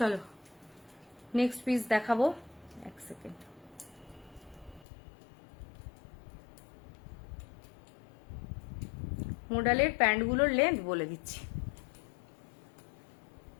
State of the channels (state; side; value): drops out; right; at 4.9 s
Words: নেক্সট পিস দেখাবো, এক সেকেন্ড। মডেলের প্যান্টগুলোর লেন্থ বলে দিচ্ছি।